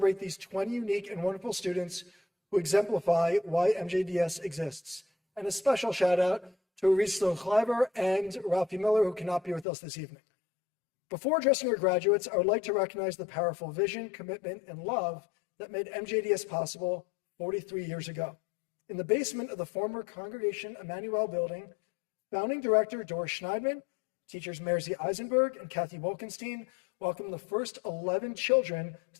these 20 unique and wonderful students who exemplify why MJDS exists. And a special shout out to Risto Kleiber and Ralphie Miller, who cannot be with us this evening. Before addressing our graduates, I would like to recognize the powerful vision, commitment, and love that made MJDS possible 43 years ago. In the basement of the former Congregation Emmanuel building, founding director Doris Schneidman, teachers Merzy Eisenberg and Kathy Wolkenstein welcomed the first 11 children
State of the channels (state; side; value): drops out; right; at 9.7 s